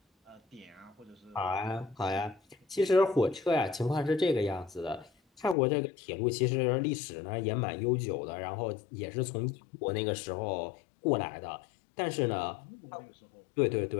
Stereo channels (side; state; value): right; drops out; at 5.6 s